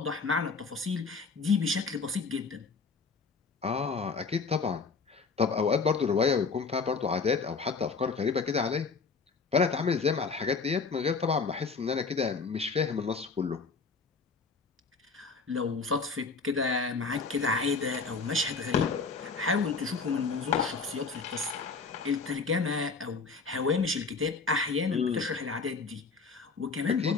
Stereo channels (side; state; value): right; quieter; 4.6 dB